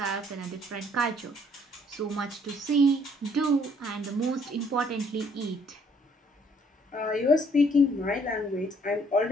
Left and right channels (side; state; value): both; normal; correlation 0.63